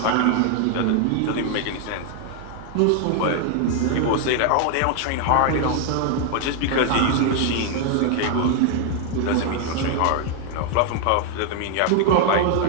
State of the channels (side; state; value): both; different; correlation 0.00